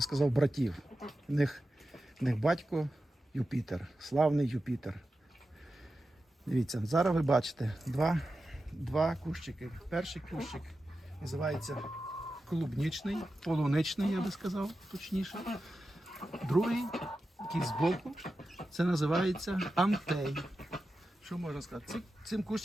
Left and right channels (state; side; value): normal; both; correlation 0.91